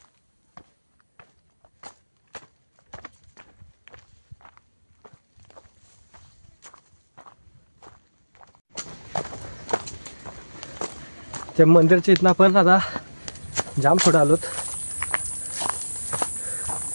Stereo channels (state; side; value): inverted; both; correlation -1.00